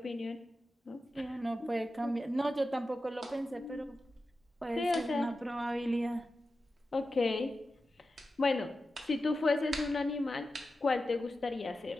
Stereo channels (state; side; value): normal; both; correlation 0.92